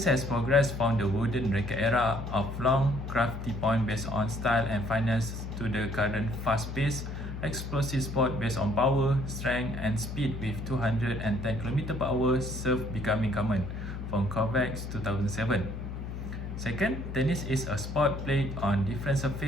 has progressed from the wooden racket era of long, crafty point based on style and finesse to the current fast-paced, explosive sport based on power, strength, and speed with 210 km/h serve becoming common from Kovacs 2007. Second, tennis is a sport played on different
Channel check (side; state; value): left; noise; hum, 7 dB below the sound